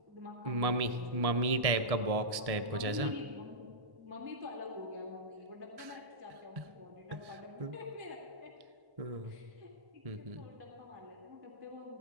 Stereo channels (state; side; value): late; left; 1.6 ms